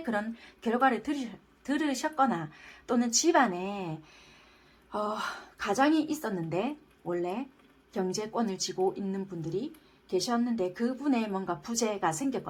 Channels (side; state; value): both; identical; correlation 1.00